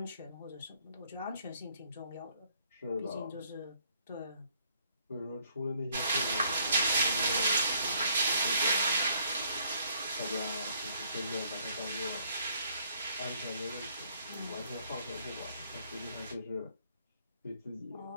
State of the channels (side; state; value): both; inverted; correlation -0.67